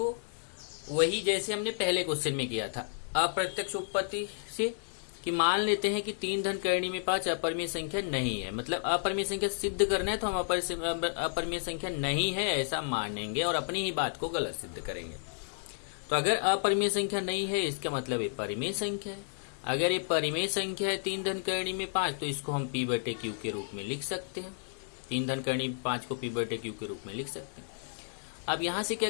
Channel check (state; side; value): silent; right; digital silence